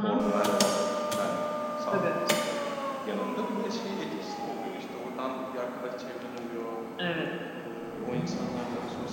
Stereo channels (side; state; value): both; identical; correlation 1.00